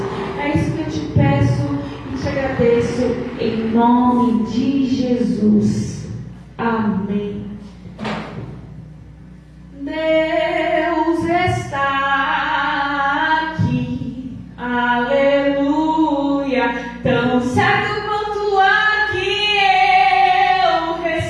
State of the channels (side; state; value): both; identical; correlation 1.00